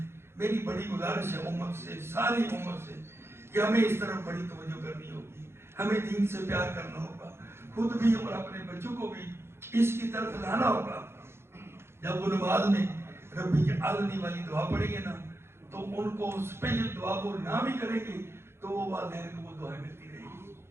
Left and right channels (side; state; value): left; late; 0.12 ms